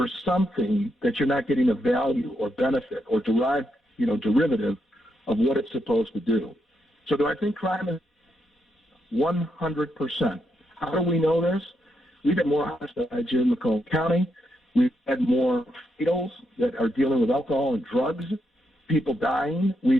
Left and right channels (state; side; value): normal; both; correlation 0.80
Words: something that you're not getting a value or benefit or derivative of what it's supposed to do. So do I think crime is 100%? How do we know this? We've had more homicides here in Macomb County. We've had more fatals that are dealing with alcohol and drugs, people dying.